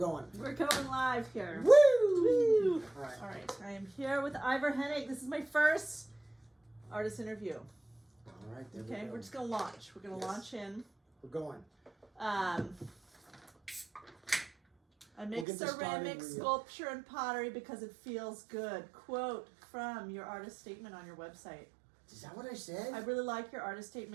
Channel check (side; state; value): left; drops out; at 15.5 s